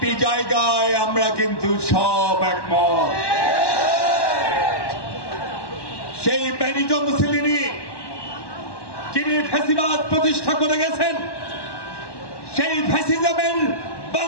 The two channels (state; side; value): late; right; 1.1 ms